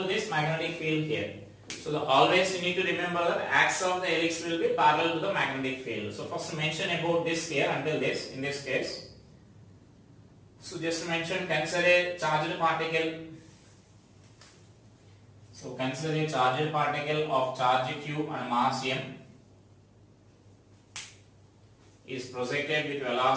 to this magnetic field here. So always you need to remember that axis of the helix will be parallel to the magnetic field. So first mention about this here until this in this case. So just mention, consider a charged particle. So consider a charged particle of charge q and mass m is projected with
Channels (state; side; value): identical; both; correlation 1.00